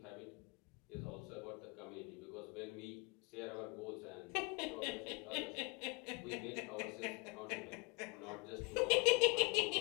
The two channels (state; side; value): quieter; right; 30.3 dB